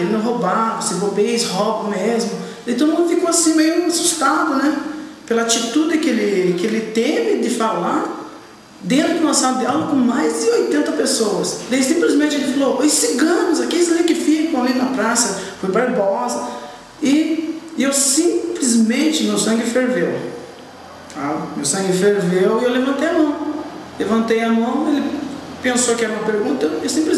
roubar, se bobeia, eles roubam mesmo. Daí todo mundo ficou assim meio assustado, né? Pela atitude que ele teve de falar dentro de uma sala de aula com mais de 80 pessoas. Daí simplesmente ele falou, os ciganos, aqueles ali que ficam ali na praça, foi Barbosa. E eu simplesmente, meu sangue ferveu. Tá? Meu sangue ferveu e eu levantei a mão. Levantei a mão, ele pensou que era uma pergunta, eu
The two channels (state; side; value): identical; both; correlation 1.00